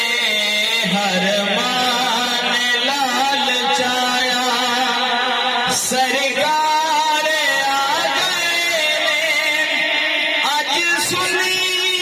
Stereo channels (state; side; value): identical; both; correlation 1.00